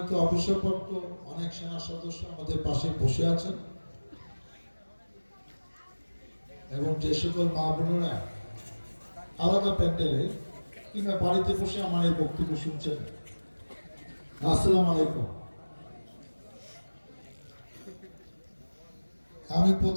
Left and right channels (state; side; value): inverted; both; correlation -1.00